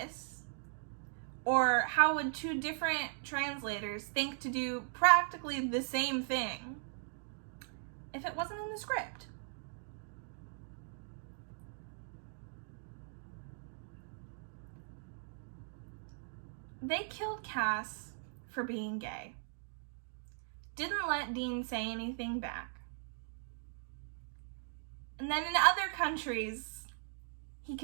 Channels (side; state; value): left; silent; digital silence